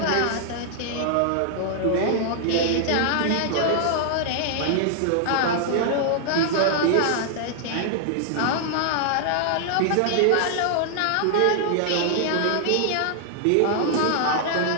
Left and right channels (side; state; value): both; different; correlation 0.00